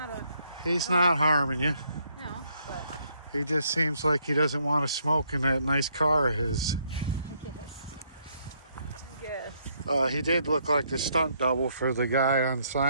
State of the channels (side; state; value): both; inverted; correlation -0.71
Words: a He's not harming you. no, but He just seems like he doesn't want to smoke in that nice car of his. I guess. He did look like the stunt double for the guy on